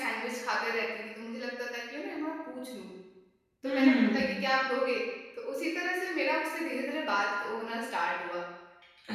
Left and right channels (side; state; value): both; identical; correlation 1.00